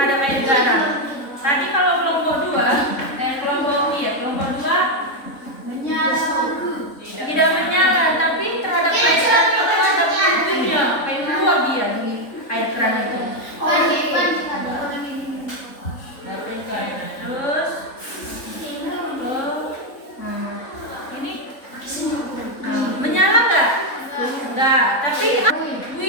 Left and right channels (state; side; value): late; right; 3.6 ms